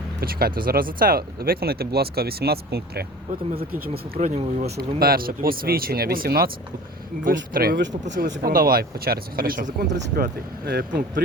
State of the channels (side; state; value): both; normal; correlation 0.41